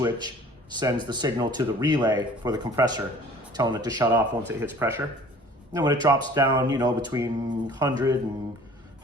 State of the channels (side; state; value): both; normal; correlation 0.49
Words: sends the signal to the relay for the compressor, telling it to shut off once it hits pressure. And then when it drops down, you know, between 100 and